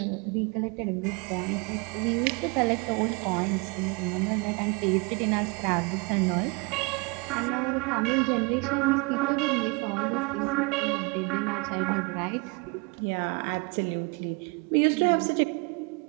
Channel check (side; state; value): left; quieter; 29.2 dB